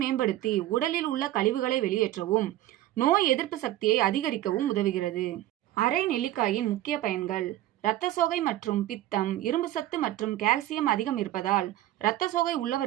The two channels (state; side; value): quieter; left; 14.3 dB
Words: மேம்படுத்தி உடலில் உள்ள கழிவுகளை வெளியேற்றவும், நோய் எதிர்ப்பு சக்தியை அதிகரிக்கவும் உதவுகிறது. அரை நெல்லிக்காயின் முக்கிய பயன்கள்: இரத்த சோகை மற்றும் பித்தம், இரும்பு சத்து மற்றும் கால்சியம் அதிகம் இருப்பதால் இரத்த சோகை